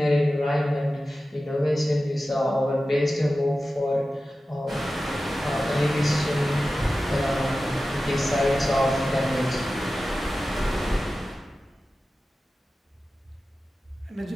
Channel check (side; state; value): both; normal; correlation 0.94